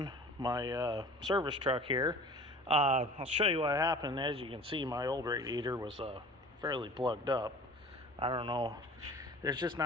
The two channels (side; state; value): both; normal; correlation 0.43